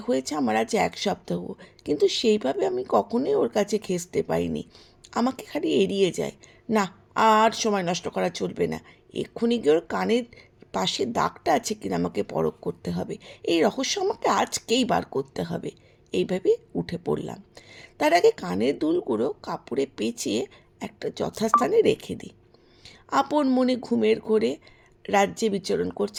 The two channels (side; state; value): both; identical; correlation 1.00